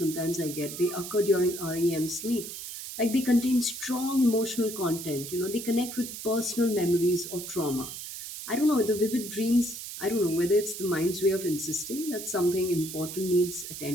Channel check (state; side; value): noise; right; hiss, 9 dB below the sound